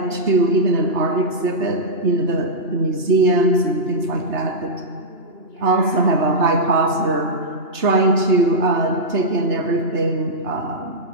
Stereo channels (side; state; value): left; late; 2.9 ms